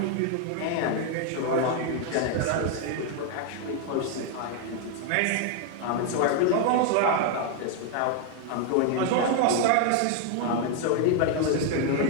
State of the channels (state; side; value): different; both; correlation 0.01